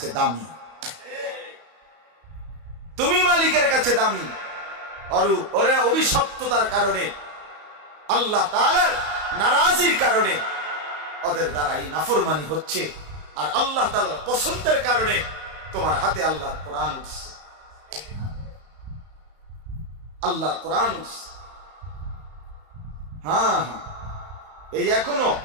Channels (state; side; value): late; left; 34 ms